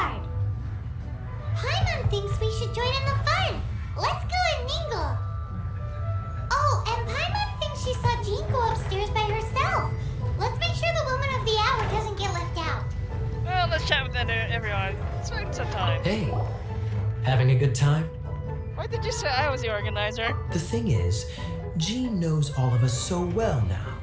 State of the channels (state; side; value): identical; both; correlation 1.00